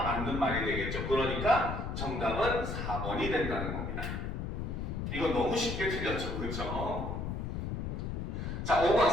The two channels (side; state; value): left; noise; rumble, 3 dB below the sound